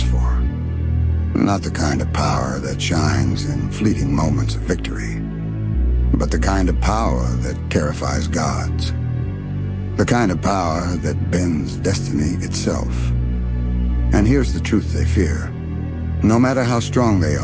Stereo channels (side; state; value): both; identical; correlation 1.00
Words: for. Not the kind of power that shines in fleeting moments of victory. But the kind of power that terrifies gods. The kind of power that bends destiny itself. And here's the truth they fear. No matter how strong they